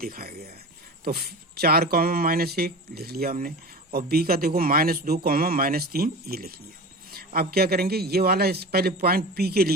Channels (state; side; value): normal; both; correlation 0.31